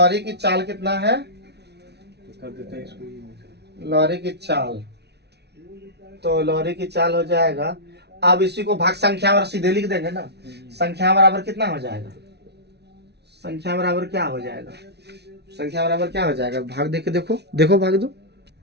की चाल कितना है, कर देते हैं इसको। लॉरी की चाल, तो लॉरी की चाल हो जाएगा, अब इसी को भाग संख्या और सीधे लिख देंगे ना, संख्या बराबर कितना हो जाएगा, संख्या बराबर क्या हो जाएगा, संख्या बराबर क्या हो जाएगा, भाग दे के देखो, देखो भाग दो,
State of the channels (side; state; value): left; late; 0.49 ms